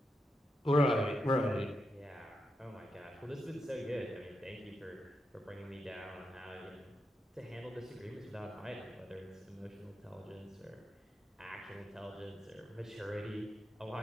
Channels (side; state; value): both; normal; correlation 0.85